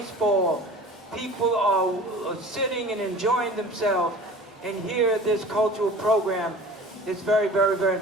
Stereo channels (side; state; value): both; normal; correlation 0.42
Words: People are sitting and enjoying themselves, and here this cultural program is very, very, very